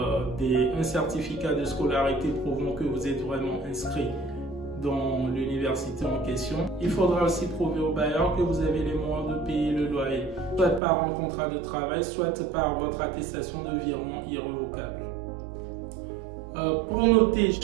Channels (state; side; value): drops out; left; at 10.8 s